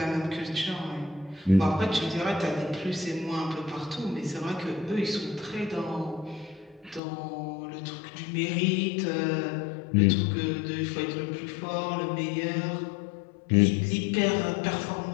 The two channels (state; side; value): drops out; right; at 7.0 s